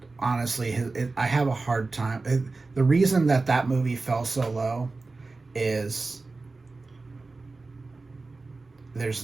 honestly, I have a hard time. The reason that movie fell so low is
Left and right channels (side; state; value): left; quieter; 3.6 dB